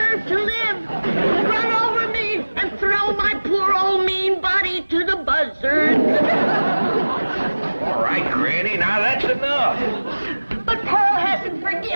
to live. Run over me and throw my poor old mean body to the buzzards. All right, Granny, now that's enough. But Pearl hasn't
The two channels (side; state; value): both; inverted; correlation -1.00